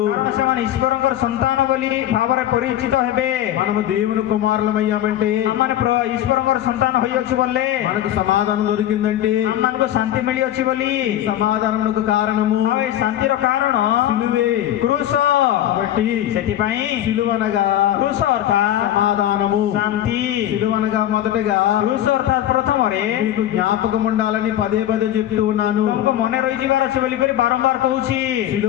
କାରଣ ସେମାନେ ଈଶ୍ୱରଙ୍କର ସନ୍ତାନ ବୋଲି ଭାବରେ ପରିଚିତ ହେବେ। మనము దేవుని కుమారులమయ్యామంటే, ଆମମାନେ ଈଶ୍ୱରଙ୍କର ସନ୍ତାନ ହୋଇଅଛୁ ବୋଲେ మనకు సమాధానం దొరికిందంటే, ଆମମାନଙ୍କୁ ଶାନ୍ତି ମିଳିଅଛି ବୋଲି। సమాధానమునకు కారణము ଆଉ ଏ ଶାନ୍ତିର କାରଣ సిలువే. କ୍ରୁଶ। కాబట్టి ସେଥିପାଇଁ సిలువనగా କ୍ରୁଶ ଅର୍ଥାତ୍ సమాధానము, ଶାନ୍ତି। సిలువనగా మొదటగా କ୍ରୁଶ ଅର୍ଥାତ୍ ପ୍ରଥମରେ మీకు జ్ఞాపకం ఉండాలని పదే పదే చెప్తూ ఉన్నాను. ତମକୁ ମନେ ରହିଯିବାର ଅଛି ବୋଲି କରି ବାରମ୍ବାର କହୁଛି।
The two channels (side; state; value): right; quieter; 12.2 dB